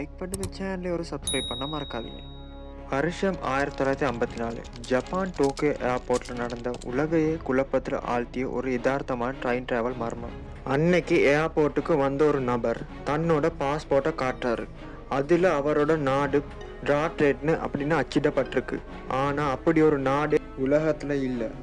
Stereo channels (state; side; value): identical; both; correlation 1.00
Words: பண்ணி இந்த சேனலை ஒரு சப்ஸ்கிரைப் பண்ண மறக்காதீங்க. வருஷம் 1954 ஜப்பான் டோக்கியோ ஏர்போர்ட்டில் நடந்த உலகையே குழப்பத்தில் ஆழ்த்திய ஒரு யதார்த்தமான ட்ரெயின் டிராவல் மர்மம். அன்னைக்கு ஏர்போர்ட்டுக்கு வந்த ஒரு நபர் தன்னோட பாஸ்போர்ட்டை காட்டுறாரு. அதில் அவரோட நாடு டிராட்ரேட்னு அப்படின்னு அச்சிடப்பட்டிருக்கு. ஆனால் அப்படி ஒரு நாடு உலகத்தில் இல்லை.